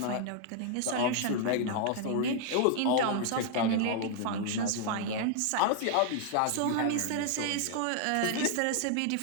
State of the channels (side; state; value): both; different; correlation 0.00